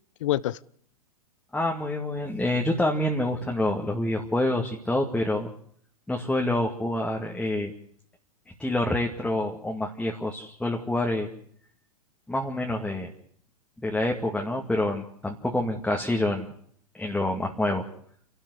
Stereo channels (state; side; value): normal; both; correlation 0.73